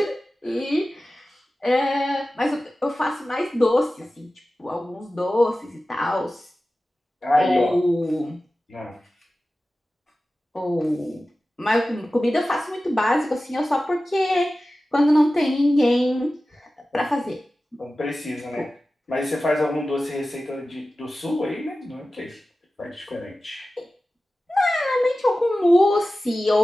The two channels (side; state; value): both; normal; correlation 0.95